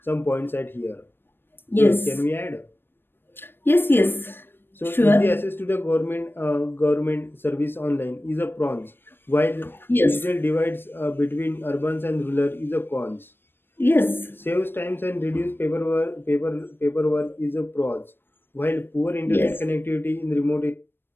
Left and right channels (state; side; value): late; right; 0.10 ms